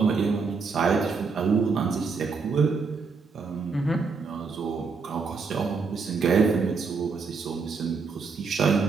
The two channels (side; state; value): left; quieter; 4.9 dB